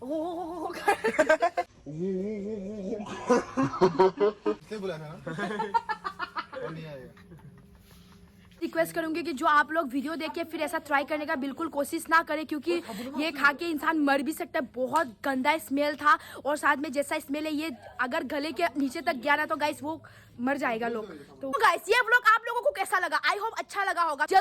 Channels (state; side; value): identical; both; correlation 1.00